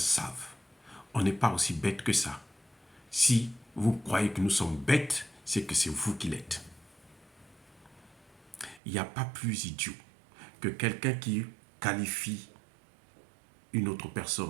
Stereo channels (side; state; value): left; drops out; at 8.8 s